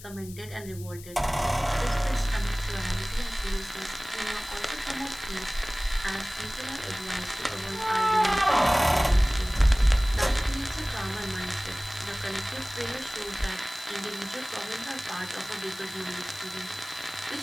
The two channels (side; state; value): left; noise; hiss, 17 dB below the sound